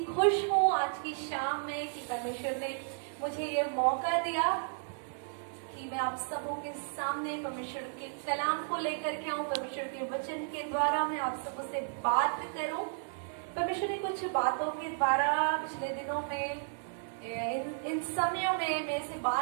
खुश हूँ आज की शाम में कि परमेश्वर ने मुझे ये मौका दिया कि मैं आप सबों के सामने परमेश्वर के कलाम को लेकर के आऊं, परमेश्वर के वचन के द्वारा मैं आप सबों से बात करूं। परमेश्वर ने कुछ बातों के द्वारा पिछले दिनों में इन समयों में मेरे से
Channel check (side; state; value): left; silent; digital silence